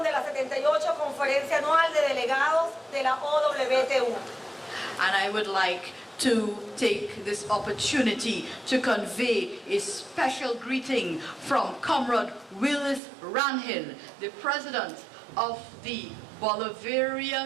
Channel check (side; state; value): left; drops out; at 13.0 s